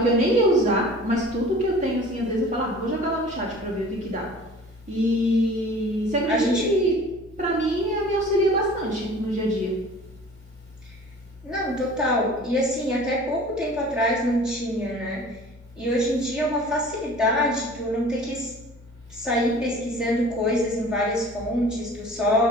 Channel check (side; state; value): both; normal; correlation 0.45